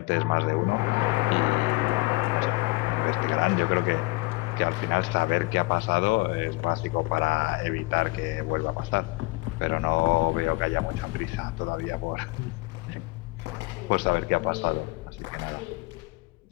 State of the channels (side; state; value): right; quieter; 23.4 dB